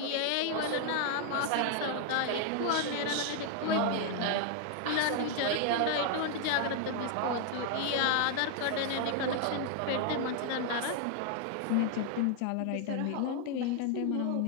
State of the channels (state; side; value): different; both; correlation 0.00